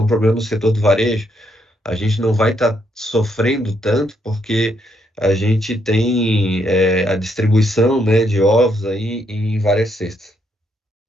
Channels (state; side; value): normal; both; correlation 0.75